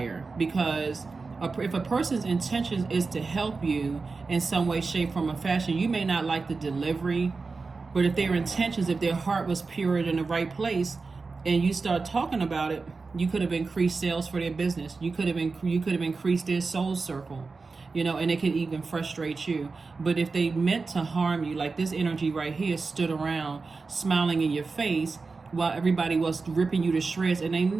because if a person's intention is to help you in some way, shape, form, or fashion, you may not like the delivery, but if their intentions, if their heart was pure in the right place, and you start talking about it, you could have increased sales for their business. You could have increased their soul circle, and it could even frustrate you. But if they meant to harm you, like this energy right here stood around smiling in your face while everybody was ripping you to shreds, and they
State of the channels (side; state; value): left; quieter; 4.2 dB